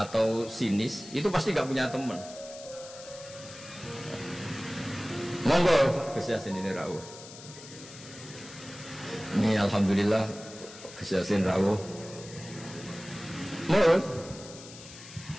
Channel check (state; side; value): noise; left; hiss, 16 dB below the sound